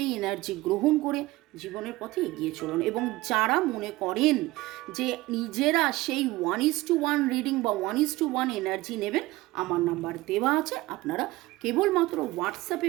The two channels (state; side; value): quieter; left; 19.1 dB